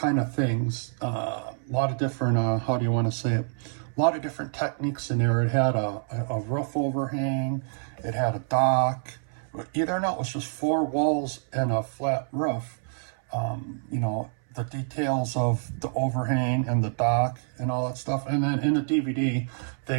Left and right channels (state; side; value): silent; left; 60 dB below the other